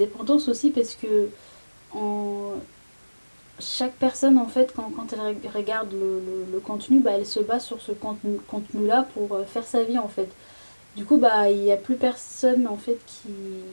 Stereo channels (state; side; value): inverted; both; correlation -1.00